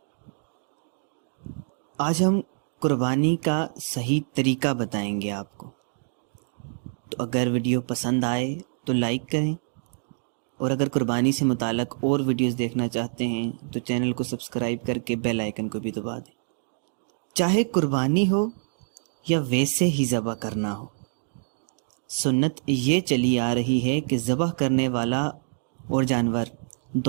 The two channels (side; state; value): left; silent; digital silence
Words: آج ہم قربانی کا صحیح طریقہ بتائیں گے آپ کو، تو اگر ویڈیو پسند آئے تو لائک کریں، اور اگر قربانی سے متعلق اور ویڈیوز دیکھنا چاہتے ہیں تو چینل کو سبسکرائب کر کے بیل آئیکن کو بھی دبا دیں۔ چاہے قربانی ہو یا ویسے ہی ذبح کرنا ہو، سنت یہ چلی آ رہی ہے کہ ذبح کرنے والا اور جانور